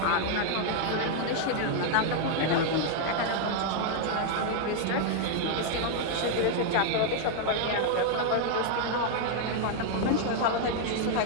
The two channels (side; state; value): both; different; correlation -0.01